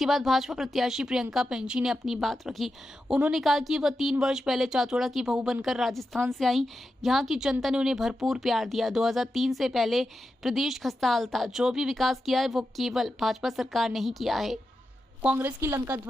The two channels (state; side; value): normal; both; correlation 0.89